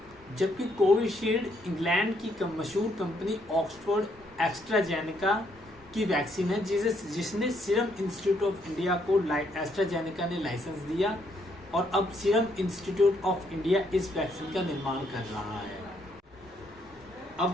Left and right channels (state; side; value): normal; both; correlation 0.72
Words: जबकि कोविशील्ड इंग्लैंड की मशहूर कंपनी ऑक्सफोर्ड एस्ट्राजेनेका की वैक्सीन है जिसने सीरम इंस्टीट्यूट ऑफ इंडिया को एस्ट्राजेनेका ने लाइसेंस दिया और अब सीरम इंस्टीट्यूट ऑफ इंडिया इस वैक्सीन का निर्माण कर रहा है।